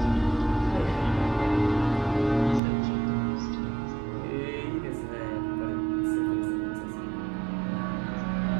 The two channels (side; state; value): left; drops out; at 2.6 s